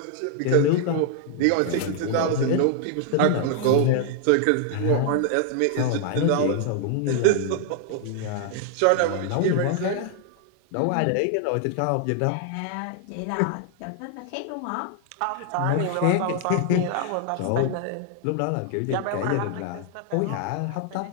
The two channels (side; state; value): both; different; correlation 0.00